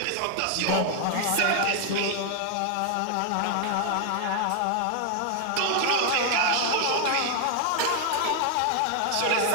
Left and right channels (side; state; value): both; different; correlation 0.00